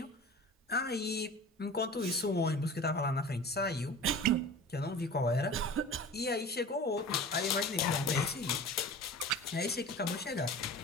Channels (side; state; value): both; normal; correlation 0.38